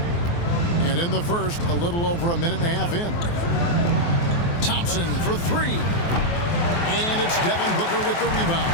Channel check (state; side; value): late; right; 23 ms